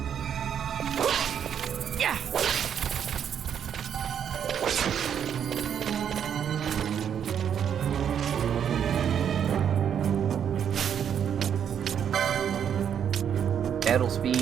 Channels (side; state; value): left; quieter; 8.5 dB